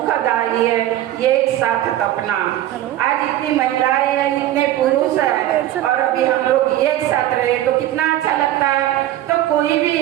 है एक साथ तपना। आज इतनी महिलाएं हैं, इतने पुरुष हैं और अभी हम लोग एक साथ रहे तो कितना अच्छा लगता है। तो कोई भी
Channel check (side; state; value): left; quieter; 13.5 dB